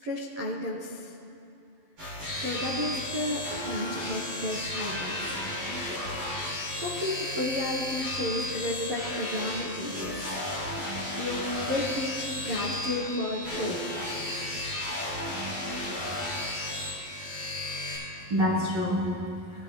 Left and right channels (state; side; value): late; left; 11 ms